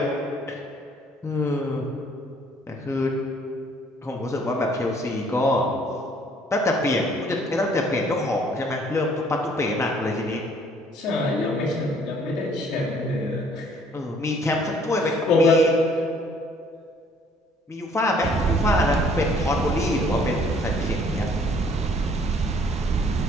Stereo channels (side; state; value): both; normal; correlation 0.60